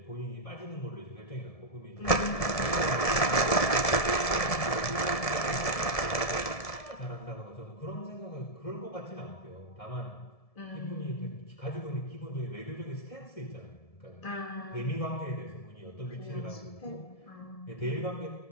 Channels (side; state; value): right; late; 1.7 ms